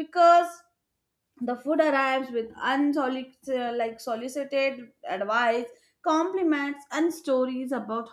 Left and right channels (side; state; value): both; identical; correlation 1.00